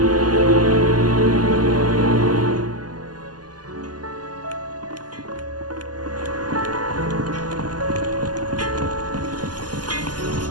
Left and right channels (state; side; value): late; left; 0.70 ms